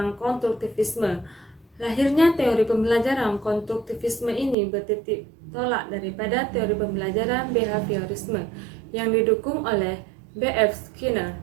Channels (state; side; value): drops out; left; at 4.5 s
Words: konstruktivisme. Lahirnya teori pembelajaran konstruktivisme ini bertitik tolak daripada teori pembelajaran behaviorisme yang didukung oleh B.F. Skinner